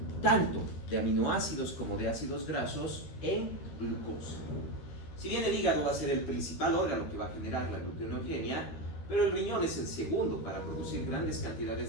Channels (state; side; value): late; right; 13 ms